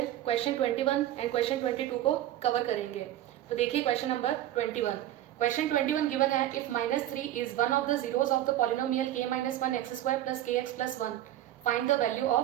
क्वेश्चन 21 एंड क्वेश्चन 22 को कवर करेंगे। तो देखिए क्वेश्चन नंबर 21। क्वेश्चन 21 गिवन है, if -3 is one of the zeros of the polynomial k-1 x² plus kx plus 1, find the value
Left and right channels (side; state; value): left; quieter; 13.1 dB